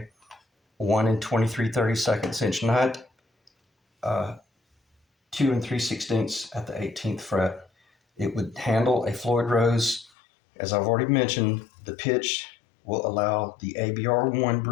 1 23/32 inch nut, 2 3/16 at the 18th fret. It would handle a Floyd Rose. As I've already mentioned, the pitch will allow the ABR1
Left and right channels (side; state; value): right; drops out; at 10.1 s